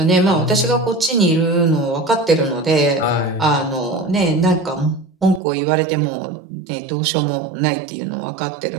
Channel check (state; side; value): drops out; left; at 5.4 s